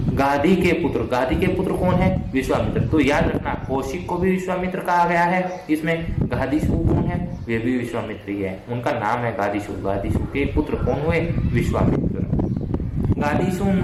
गाधी के पुत्र कौन है? विश्वामित्र। तो याद रखना, कौशिक को भी विश्वामित्र कहा गया है, इसमें गाधीशु कौन है? वे भी विश्वामित्र ही है, उनका नाम है गाधीशु। गाधीशु के पुत्र कौन हुए? विश्वामित्र। गाधीशु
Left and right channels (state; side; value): identical; both; correlation 1.00